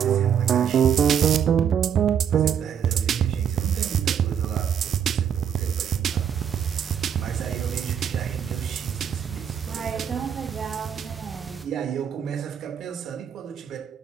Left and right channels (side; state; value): left; quieter; 8.3 dB